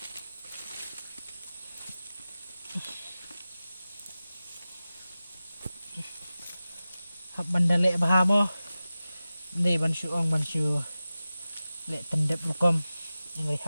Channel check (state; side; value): inverted; both; correlation -0.96